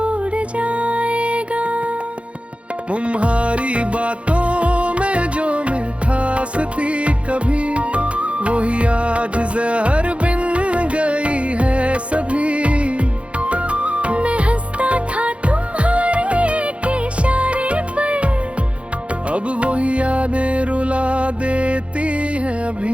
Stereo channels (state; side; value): late; left; 0.061 ms